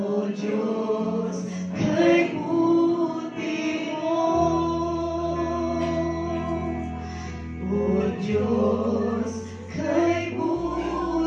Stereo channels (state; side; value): identical; both; correlation 1.00